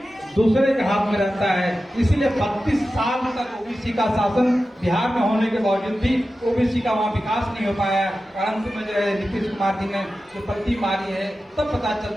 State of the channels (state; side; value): normal; both; correlation 0.93